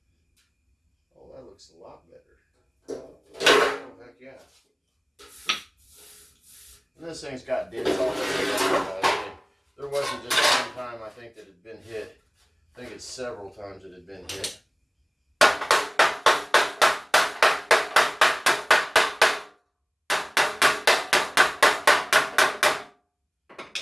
Looks a lot better. Oh, heck yeah. And this thing's got dents all over it. There wasn't just one time I think that it had been hit. I think it's several times it had been hit. I'm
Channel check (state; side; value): identical; both; correlation 1.00